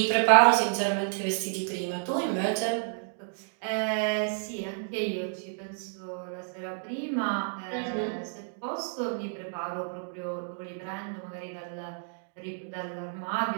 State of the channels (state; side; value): silent; left; 58 dB below the other